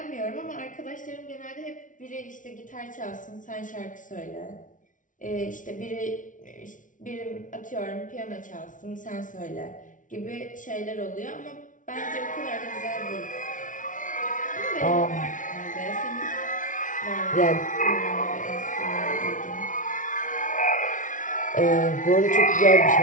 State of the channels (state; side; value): late; right; 0.38 ms